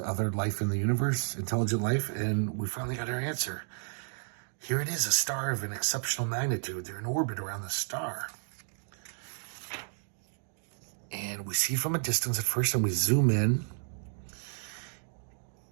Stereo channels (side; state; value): left; silent; 56 dB below the other